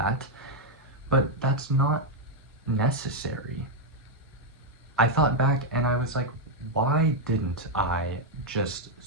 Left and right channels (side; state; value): both; normal; correlation 0.00